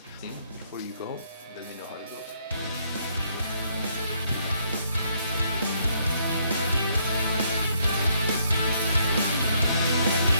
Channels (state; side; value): inverted; both; correlation -0.71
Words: Before you go, let me know how it goes.